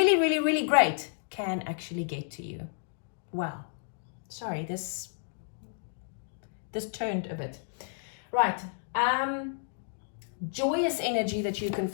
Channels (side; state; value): right; silent; digital silence